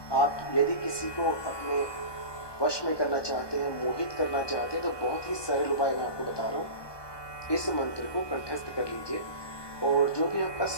आप यदि किसी को अपने वश में करना चाहते हैं, मोहित करना चाहते हैं, तो बहुत ही सरल उपाय मैं आपको बता रहा हूँ। इस मंत्र को कंठस्थ कर लीजिए और जो भी आपका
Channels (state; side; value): late; right; 1.2 ms